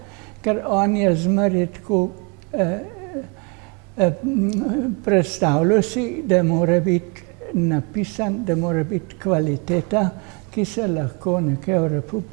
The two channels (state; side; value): quieter; left; 32.5 dB